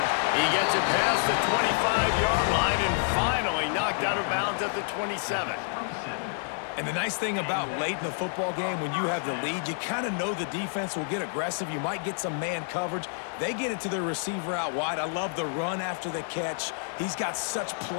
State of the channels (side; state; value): right; silent; digital silence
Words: He gets it past the 25-yard line and finally knocked out of bounds at the 27. And the nice thing about late in the football game, when you have the lead, you kind of know the defense will get aggressive. You might get some man coverage. They get it to their receiver out wide. I love the run after the catch. He's got such